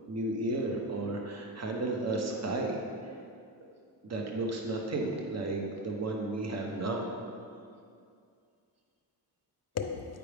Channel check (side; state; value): both; normal; correlation 0.18